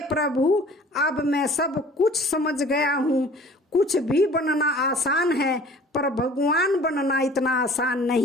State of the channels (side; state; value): both; normal; correlation 0.49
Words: प्रभु, अब मैं सब कुछ समझ गया हूँ। कुछ भी बनना आसान है, पर भगवान बनना इतना आसान